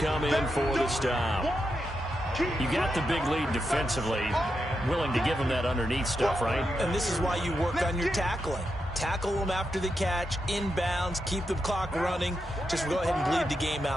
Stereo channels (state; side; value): normal; both; correlation 0.86